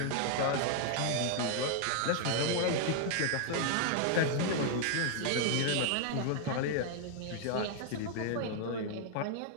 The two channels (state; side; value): different; both; correlation 0.00